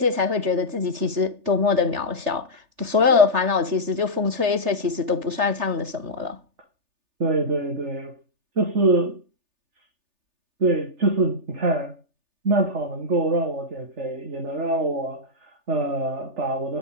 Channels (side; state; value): left; late; 3.4 ms